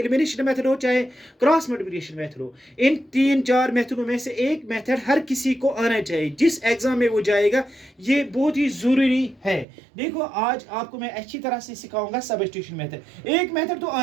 मेथड हो, चाहे क्रॉस मल्टीप्लिकेशन मेथड हो, इन 3-4 मेथडों में से एक मेथड हर किसी को आना चाहिए. जिस एग्जाम में वो जाएगा ये बहुत ही ज़रूरी है. देखो आज आपको मैं अच्छी तरह से सिखाऊंगा सब्स्टिट्यूशन मेथड. एक मेथड तो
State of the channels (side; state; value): left; drops out; at 9.7 s